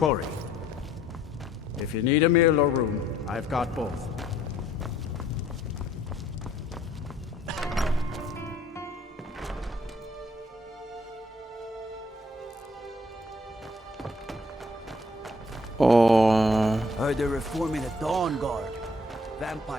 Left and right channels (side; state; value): both; normal; correlation 0.63